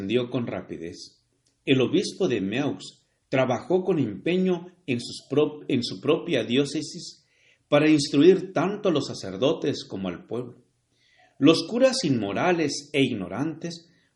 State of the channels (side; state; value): both; identical; correlation 1.00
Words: con rapidez. El obispo de Meaux trabajó con empeño en su propia diócesis para instruir tanto a los sacerdotes como al pueblo. Los curas inmorales e ignorantes